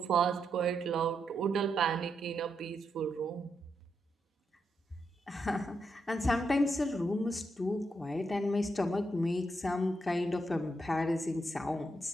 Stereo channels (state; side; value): normal; both; correlation 0.82